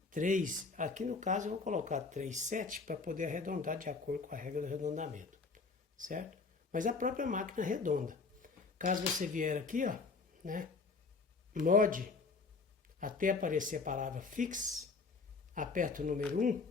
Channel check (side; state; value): right; quieter; 4.3 dB